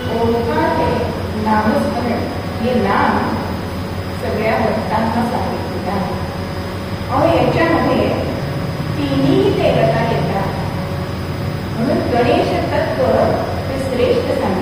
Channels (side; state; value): both; identical; correlation 1.00